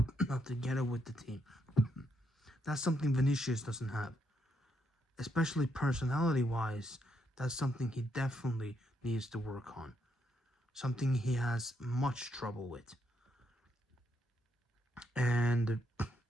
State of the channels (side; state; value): both; normal; correlation 0.77